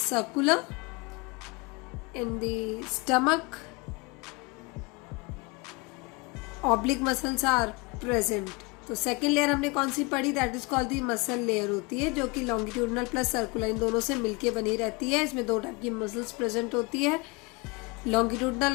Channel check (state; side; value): quieter; right; 27.4 dB